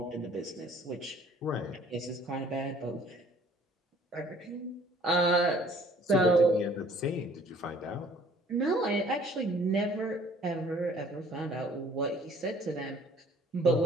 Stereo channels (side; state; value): both; normal; correlation 0.56